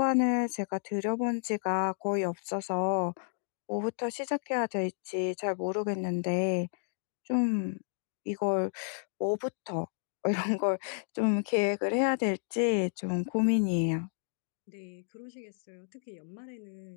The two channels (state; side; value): silent; right; digital silence